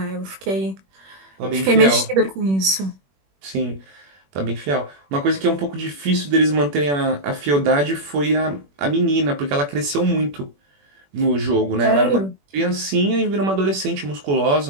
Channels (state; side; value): late; left; 21 ms